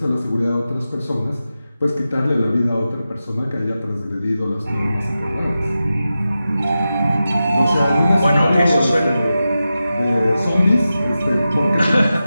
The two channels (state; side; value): inverted; both; correlation -0.92